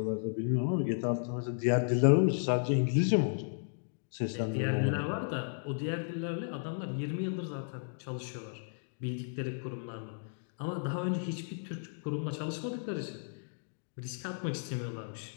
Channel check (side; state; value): right; silent; digital silence